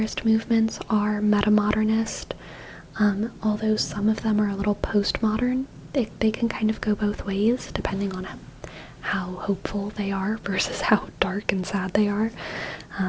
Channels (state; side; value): identical; both; correlation 1.00